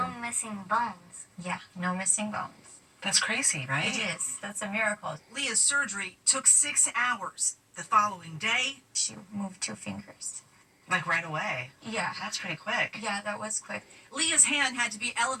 missing bones. Yeah, no missing bones. That's crazy, right? It is. That's a miracle. Leah's surgery took 6 hours. The following day, she moved 2 fingers. Right away? Yeah. That's pretty quick. Yeah, that was quick. Leah's hand had to be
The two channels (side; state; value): both; identical; correlation 1.00